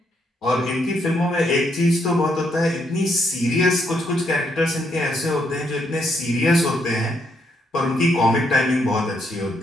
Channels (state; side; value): normal; both; correlation 0.75